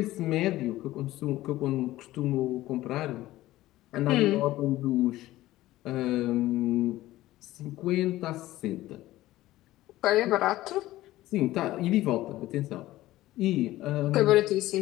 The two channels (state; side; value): quieter; right; 16.2 dB